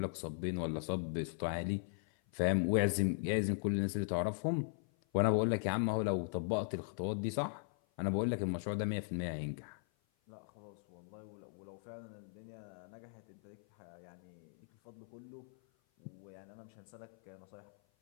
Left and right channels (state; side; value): silent; right; 52 dB below the other